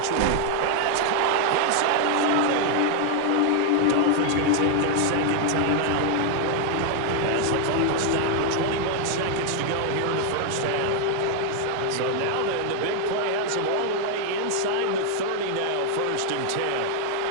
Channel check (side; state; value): both; different; correlation 0.00